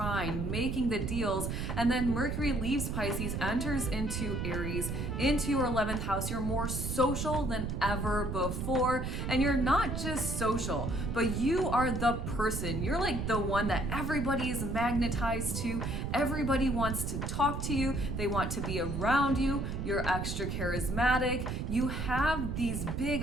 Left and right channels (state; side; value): noise; right; rumble, 2 dB below the sound